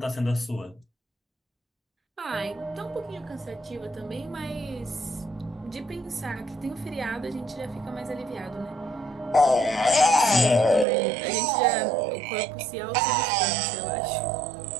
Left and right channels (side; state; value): left; drops out; at 10.9 s